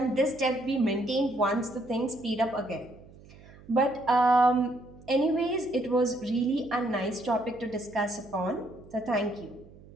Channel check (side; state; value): right; noise; hum, 22 dB below the sound